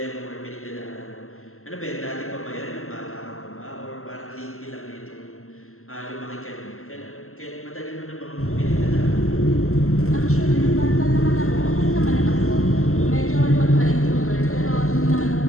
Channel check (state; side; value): late; right; 0.62 ms